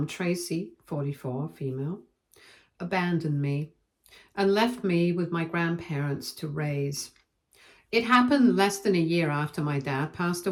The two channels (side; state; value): both; identical; correlation 1.00